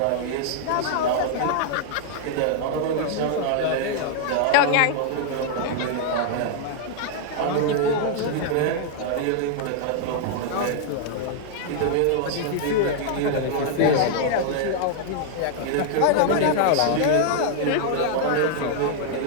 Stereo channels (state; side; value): different; both; correlation 0.00